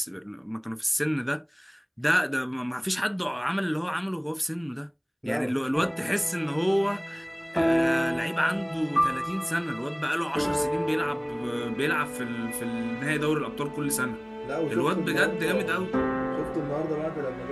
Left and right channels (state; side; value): identical; both; correlation 1.00